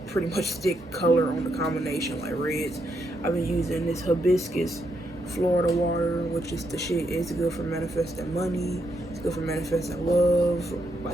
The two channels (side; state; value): both; normal; correlation 0.79